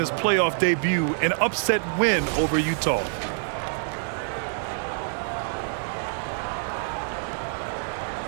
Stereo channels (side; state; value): left; silent; digital silence